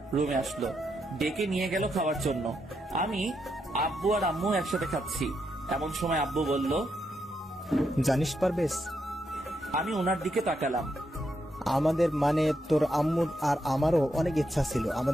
রুমে আসলো। ডেকে নিয়ে গেল খাওয়ার জন্য। আমি, আব্বু আর আম্মু একসাথে খাচ্ছি। এমন সময় আব্বু বলল, জানিস পারবেশ, আমি ওনার দিকে তাকালাম। আমাদের মানে তোর আম্মুর আর আমারও অনেক ইচ্ছা ছিল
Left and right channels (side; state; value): both; normal; correlation 0.81